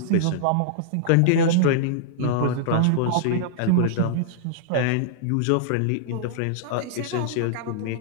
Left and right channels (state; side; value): different; both; correlation -0.01